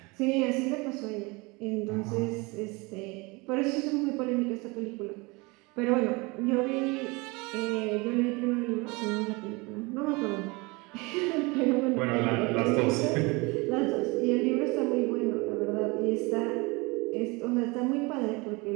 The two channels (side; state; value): left; quieter; 26.0 dB